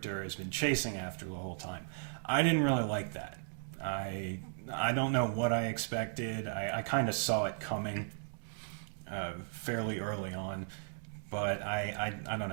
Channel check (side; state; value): left; silent; digital silence